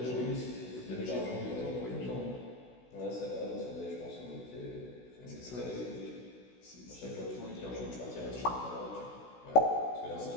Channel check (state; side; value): late; right; 16 ms